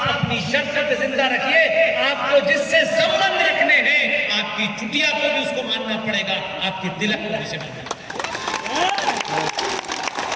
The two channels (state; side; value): identical; both; correlation 1.00